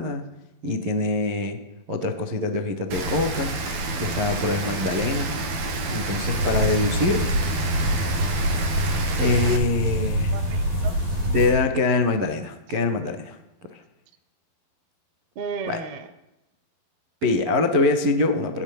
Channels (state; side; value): late; left; 12 ms